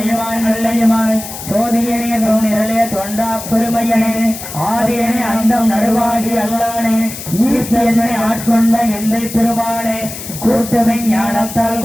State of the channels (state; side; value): noise; left; hiss, 10 dB below the sound